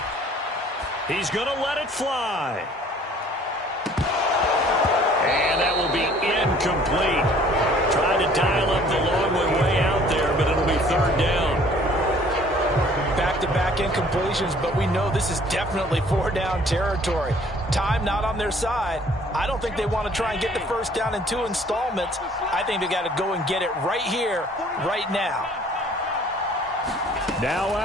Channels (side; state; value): both; normal; correlation 0.55